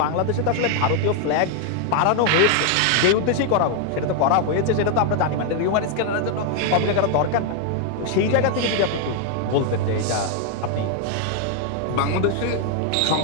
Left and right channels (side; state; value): both; different; correlation 0.00